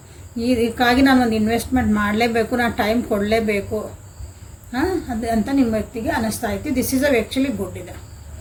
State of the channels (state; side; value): identical; both; correlation 1.00